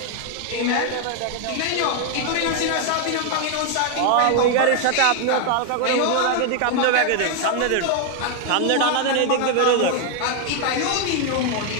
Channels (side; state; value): both; different; correlation 0.00